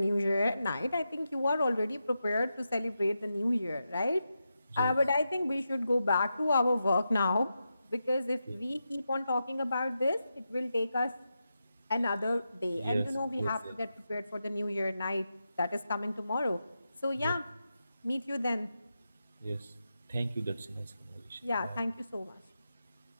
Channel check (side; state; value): both; inverted; correlation -0.88